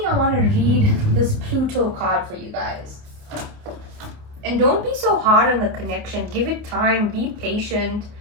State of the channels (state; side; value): late; left; 28 ms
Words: I want to read this Pluto card for you guys. And don't be so hard on the connection, give it time, be patient,